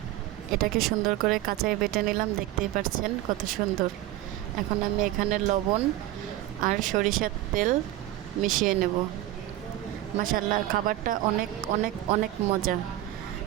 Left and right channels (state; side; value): quieter; left; 14.9 dB